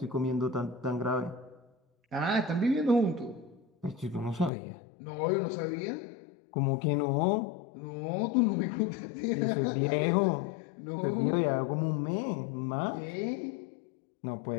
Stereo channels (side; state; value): right; drops out; at 4.5 s